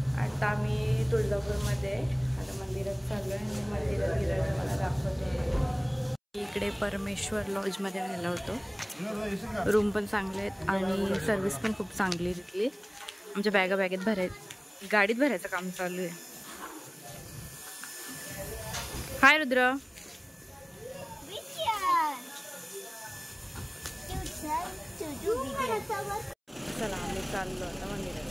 आता आम्ही तुळजापूरमध्ये आता मंदिरात चाललो आहे आणि मंदिरात गेल्यावर मला दाखवतो. इकडे परमेश्वर लॉजमध्ये राहिला होतो. रूम पण चांगले आहेत आणि सर्विस पण खूप चांगली आहे तिथली. आमच्या बॅगेत गाडीत भरायचं काम चालू आहे. हाय रुद्र. चला आम्ही चाललो आता मंदिरात.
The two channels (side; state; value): both; identical; correlation 1.00